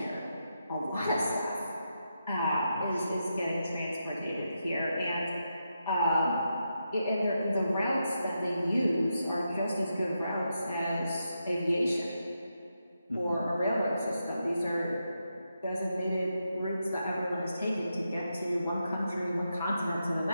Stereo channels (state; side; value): inverted; both; correlation -0.85